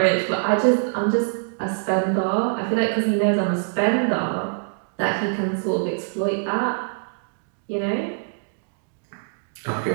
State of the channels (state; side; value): silent; left; digital silence